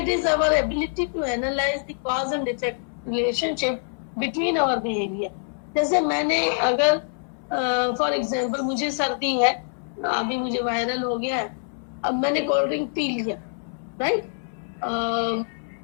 is our ability to analyse the cause and effect relationship between our behaviour. जैसे मैंने अगर फॉर एग्जाम्पल मुझे सर्दी है, अभी मुझे वायरल हो गया है, अब मैंने कोल्ड ड्रिंक पी लिया, राइट,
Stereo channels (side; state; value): right; silent; 62 dB below the other